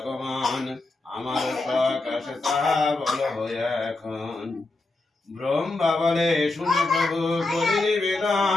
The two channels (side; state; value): right; quieter; 3.1 dB